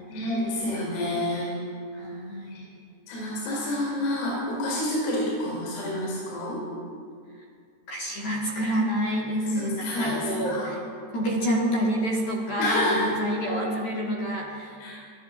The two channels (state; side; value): late; right; 13 ms